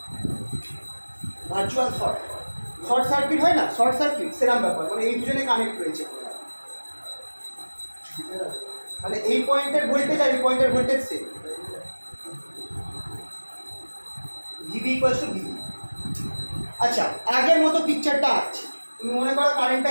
Virtual short, short circuit হয় না, শর্ট সার্কিট সেরকম ব্যাপার, মানে এই দুজনে কানেক্ট রয়েছে, মানে এই পয়েন্টের ভোল্টেজ আর এই পয়েন্টের voltage same. VV equals to VV. আচ্ছা, আগের মতো পিকচারটা আছে, তুমি মনে করো কারেন্টটা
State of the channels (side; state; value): both; inverted; correlation -1.00